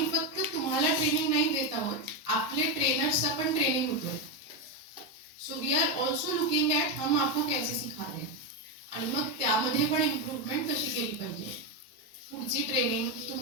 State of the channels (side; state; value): both; normal; correlation 0.10